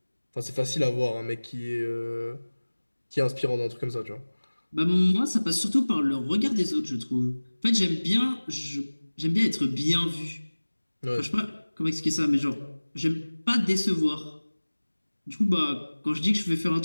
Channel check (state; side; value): inverted; both; correlation -1.00